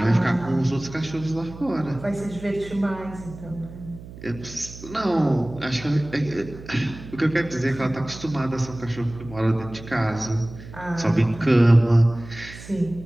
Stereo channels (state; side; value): noise; right; hum, 15 dB below the sound